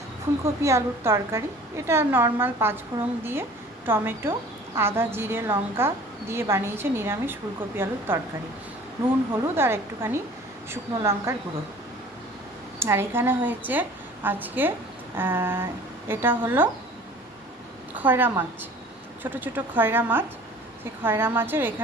ফুলকপি আলুর তরকারি। এটা নর্মাল পাঁচফোড়ন দিয়ে টমেটো আদা জিরে লঙ্কা দিয়ে বানিয়েছে নিরামিষ ফুলকপি আলুর তরকারি। নুন হলুদ আর একটুখানি শুকনো লঙ্কার গুঁড়ো। আর এখানে হয়েছে আজকে এটা হলো খয়রা মাছ, ছোট ছোট খয়রা মাছ। সেই খয়রা মাছের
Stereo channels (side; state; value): both; normal; correlation 0.47